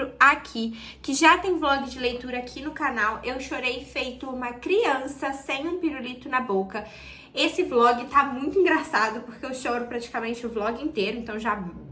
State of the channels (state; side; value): identical; both; correlation 1.00